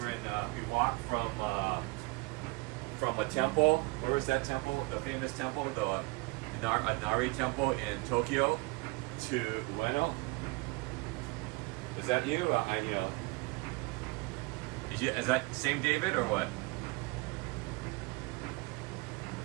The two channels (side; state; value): left; quieter; 26.0 dB